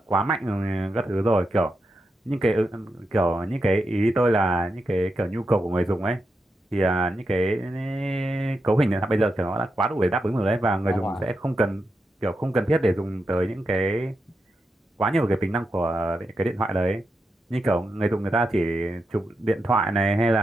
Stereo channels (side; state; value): both; normal; correlation 0.86